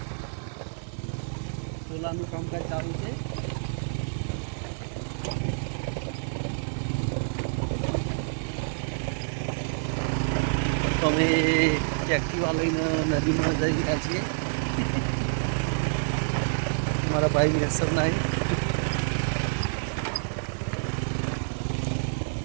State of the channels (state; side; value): silent; left; digital silence